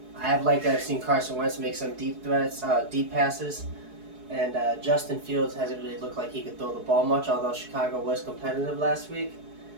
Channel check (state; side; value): late; left; 4.7 ms